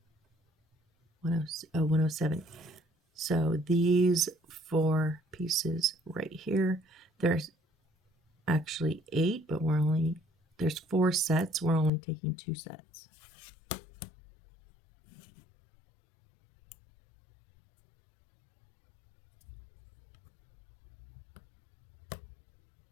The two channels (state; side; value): drops out; right; at 11.9 s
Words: 107. So these 4 pieces right here, there's actually 8, but there's 4 sets. We're only taking 2 sets.